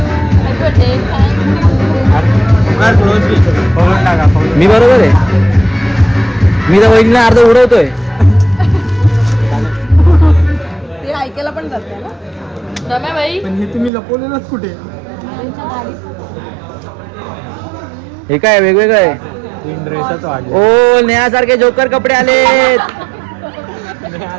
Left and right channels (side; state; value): left; drops out; at 13.9 s